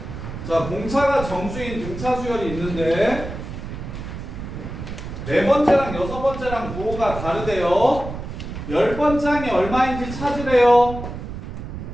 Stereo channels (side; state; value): right; noise; rumble, 8 dB below the sound